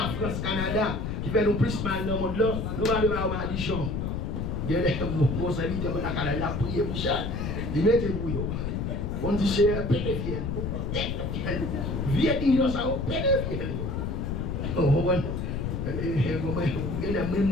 France, Canada, qui fait nous plus mal dans le monde là, nous allons avoir une maldition. Il y a des bons amis qui ont prié pour ça. Ils mettent pour eux. On dit c'est pédophile. Vieux dinosaure, pédophile.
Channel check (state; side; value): noise; left; rumble, 2 dB below the sound